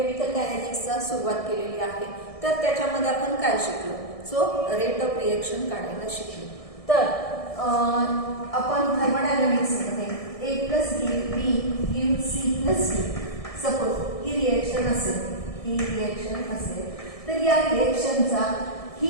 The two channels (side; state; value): right; late; 1.6 ms